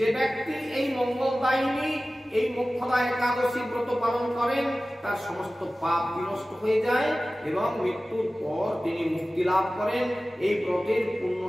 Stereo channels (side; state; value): both; normal; correlation 0.96